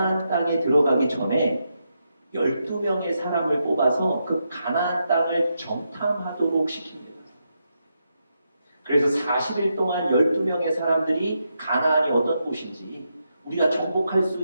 땅에 들어가기 전에 12명의 사람을 뽑아서 그 가나안 땅을 정탐하도록 시킵니다. 그래서 40일 동안 12명의 사람들이 가나안이 어떤 곳인지 우리가 정복할 수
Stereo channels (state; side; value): inverted; both; correlation -0.83